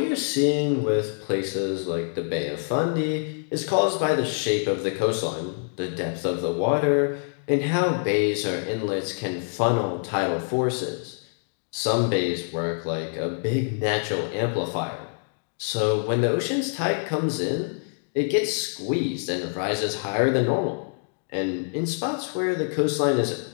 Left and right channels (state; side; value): silent; right; 57 dB below the other